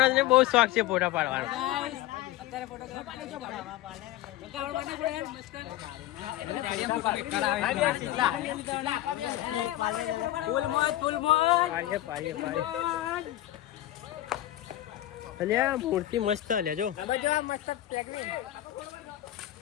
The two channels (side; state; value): right; quieter; 14.5 dB